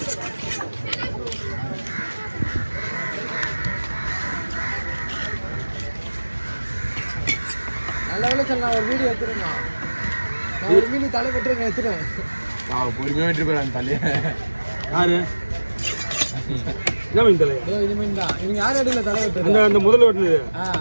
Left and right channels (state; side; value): inverted; both; correlation -1.00